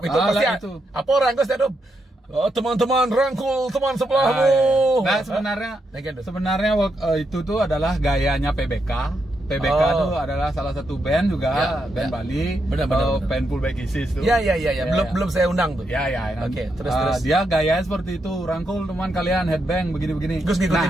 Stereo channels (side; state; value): both; normal; correlation 0.82